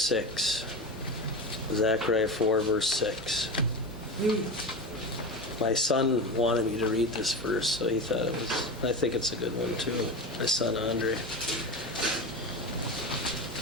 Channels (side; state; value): both; normal; correlation 0.23